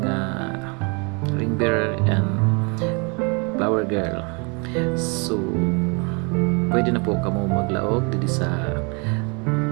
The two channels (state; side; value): quieter; left; 32.5 dB